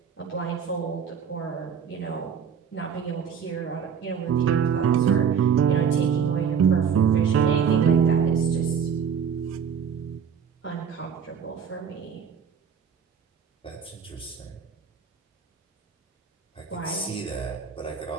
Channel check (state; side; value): quieter; left; 7.1 dB